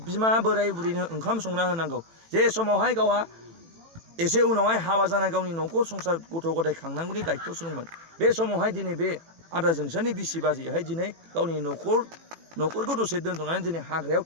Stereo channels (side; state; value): left; late; 18 ms